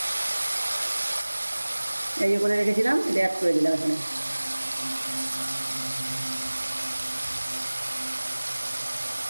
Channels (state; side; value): inverted; both; correlation -1.00